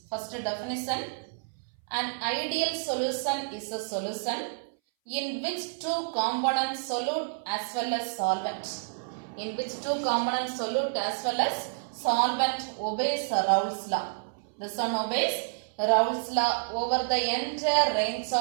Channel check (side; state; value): left; silent; 58 dB below the other